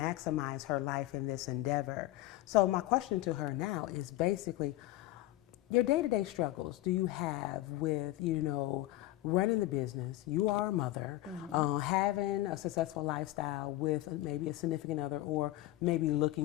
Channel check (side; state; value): right; quieter; 16.2 dB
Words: her life in this endeavor. So my question to her now is basically, your day-to-day struggles do you have with, running the business? You are a mother, having a successful lifestyle with maybe a significant other, or maybe looking